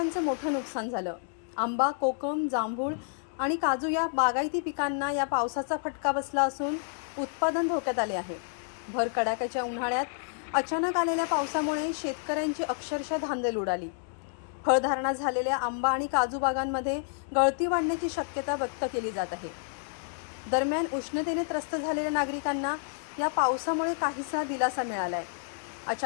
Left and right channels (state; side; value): silent; right; digital silence